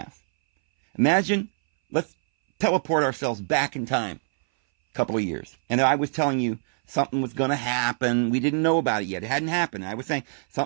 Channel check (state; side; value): silent; left; 60 dB below the other